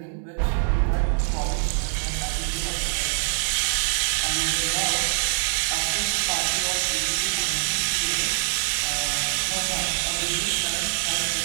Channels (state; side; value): silent; left; 62 dB below the other